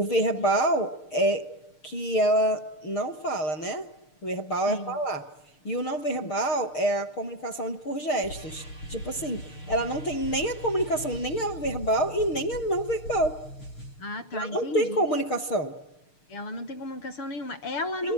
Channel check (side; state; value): right; late; 6.6 ms